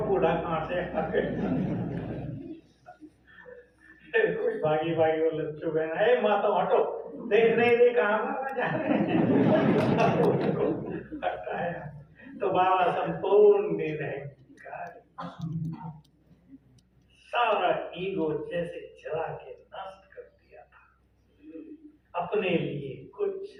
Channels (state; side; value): identical; both; correlation 1.00